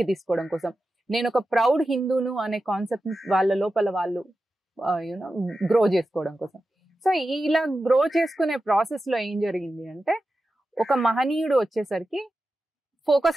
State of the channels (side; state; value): both; normal; correlation 0.92